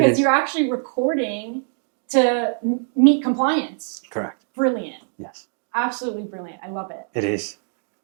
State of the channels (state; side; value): silent; left; 64 dB below the other